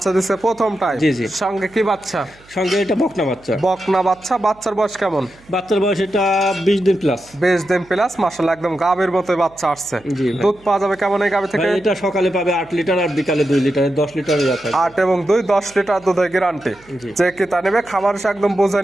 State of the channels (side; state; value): right; noise; hum, 27 dB below the sound